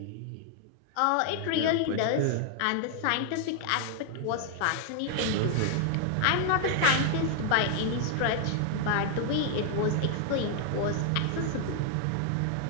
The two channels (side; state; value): both; different; correlation 0.00